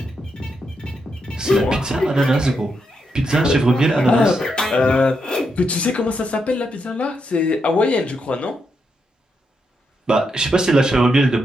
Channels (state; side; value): normal; both; correlation 0.82